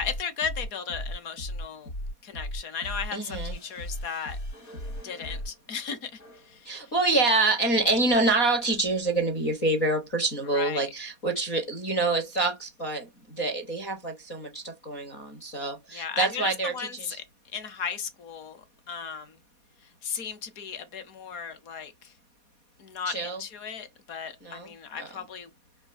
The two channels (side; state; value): right; late; 4.2 ms